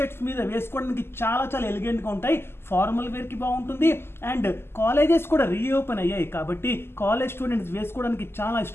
మీద వేసుకోవడానికి చాలా ఎలిగెంట్ గా ఉంటాయి. ఫార్మల్ వేర్ కి బాగుంటుంది. అండ్ కాలేజెస్ కూడా రీఓపెన్ అయ్యాయి కాబట్టి కాలేజ్ స్టూడెంట్స్ వేసుకోవడానికి చాలా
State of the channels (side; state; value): right; late; 0.12 ms